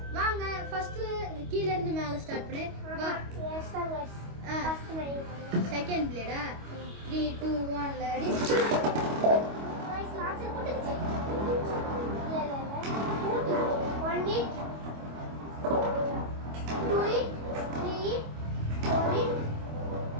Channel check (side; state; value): left; late; 25 ms